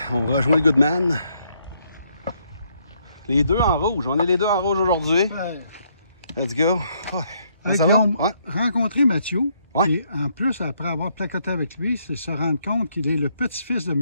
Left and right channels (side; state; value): both; inverted; correlation -0.72